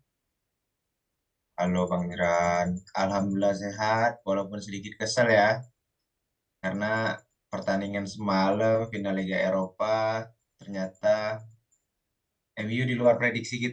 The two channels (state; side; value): identical; both; correlation 1.00